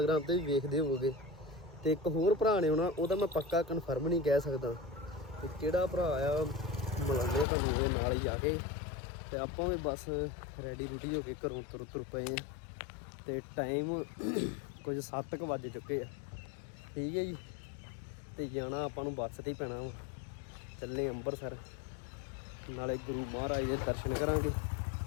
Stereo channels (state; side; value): drops out; right; at 7.5 s